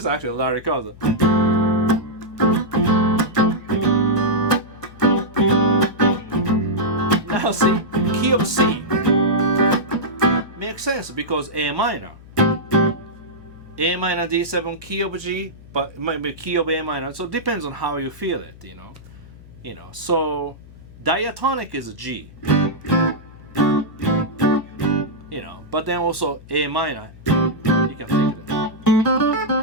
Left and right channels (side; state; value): left; noise; hum, 20 dB below the sound